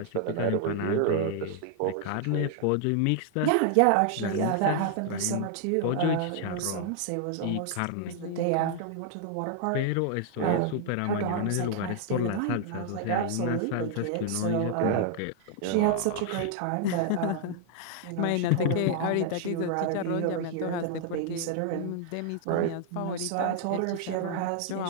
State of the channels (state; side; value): different; both; correlation 0.00